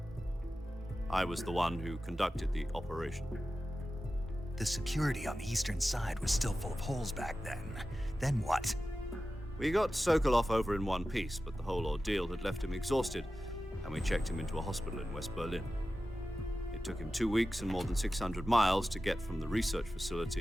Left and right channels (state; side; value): normal; both; correlation 0.94